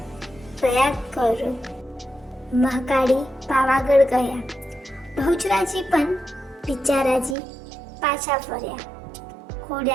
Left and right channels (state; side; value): drops out; left; at 7.4 s